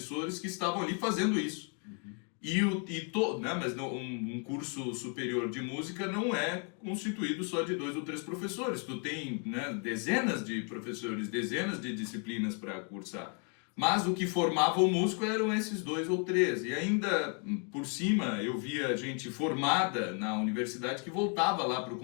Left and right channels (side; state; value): right; quieter; 39.0 dB